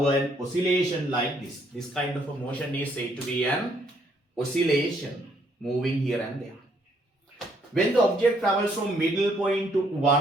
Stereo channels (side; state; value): both; normal; correlation 0.69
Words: an oscillation like this. This kind of a motion is said to be an oscillation, moving here and there. When the object travels from middle point to